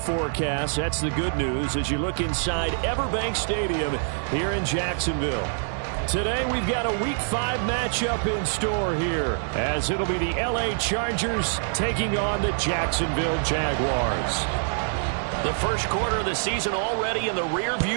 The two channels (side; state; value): left; silent; digital silence